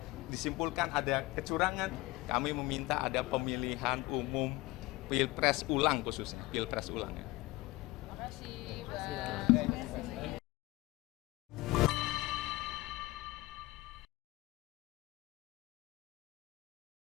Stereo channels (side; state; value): right; quieter; 20.6 dB